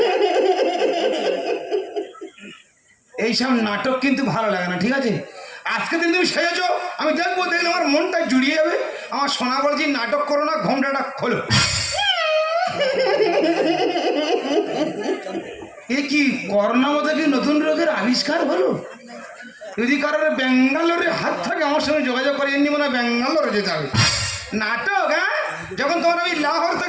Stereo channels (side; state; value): both; identical; correlation 1.00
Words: এইসব নাটক কিন্তু ভালো লাগে না ঠিক আছে আজকে দিন তুমি সেজেছ আমি দেখবো দেখলে আমার মনটা জুড়িয়ে যাবে আমার সোনা বলেছি নাটক করো না ঘোমটাটা খোলো এ কি করোনা মতো কি নতুন রোগের আবিষ্কার হলো যদি কারোর ব্যাঙ্গালোরের হাত থাকে আমার সঙ্গে যোগাযোগ করে এমনি মনে হয় ব্যাঙ্গালোরে যেতে হবে নাটক হ্যাঁ যখন তোমার আমি লাহোর